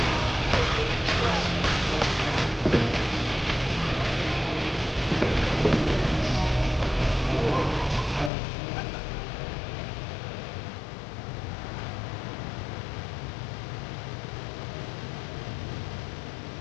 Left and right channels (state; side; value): drops out; right; at 8.3 s